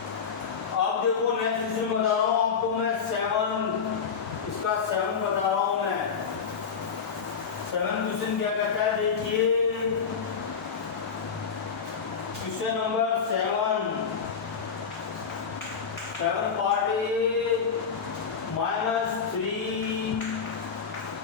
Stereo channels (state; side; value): quieter; right; 6.2 dB